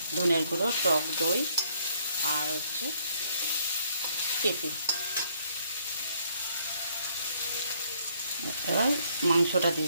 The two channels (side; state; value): both; inverted; correlation -0.66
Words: ধনের গুঁড়ো, টক দই, আর হচ্ছে পেঁপে। এবার মাংসটা দিয়ে